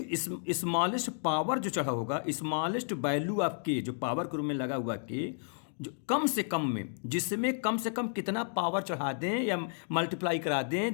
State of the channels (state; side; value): silent; right; digital silence